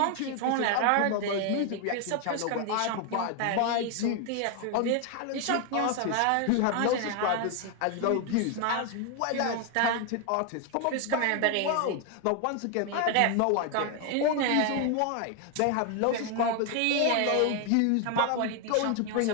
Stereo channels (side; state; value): both; different; correlation 0.01